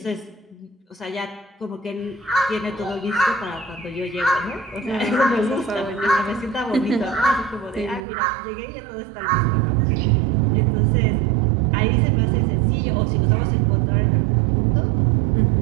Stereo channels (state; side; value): drops out; left; at 8.1 s